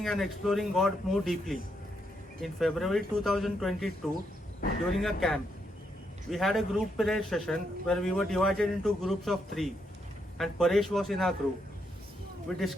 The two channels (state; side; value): normal; both; correlation 0.78